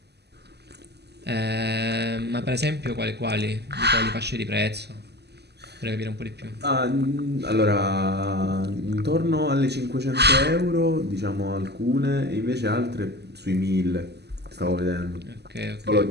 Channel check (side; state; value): left; late; 0.49 ms